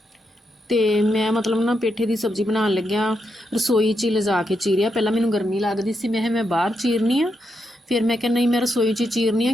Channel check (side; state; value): both; normal; correlation 0.83